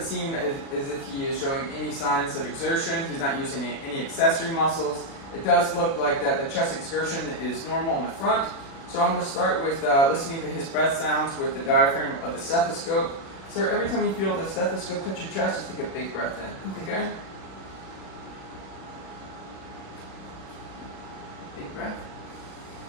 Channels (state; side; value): late; right; 36 ms